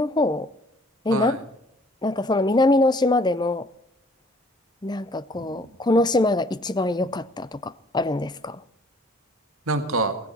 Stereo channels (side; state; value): both; normal; correlation 0.58